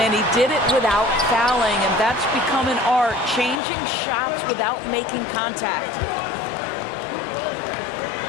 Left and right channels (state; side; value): drops out; right; at 3.6 s